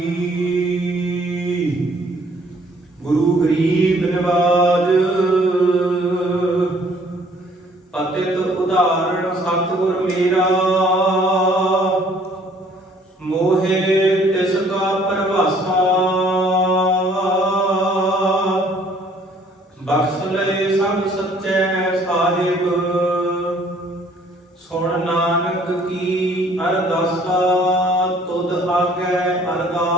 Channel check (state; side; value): normal; both; correlation 0.59